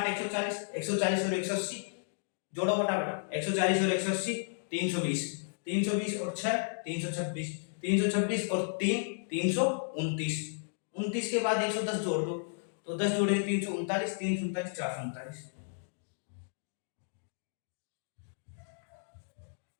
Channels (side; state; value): right; silent; digital silence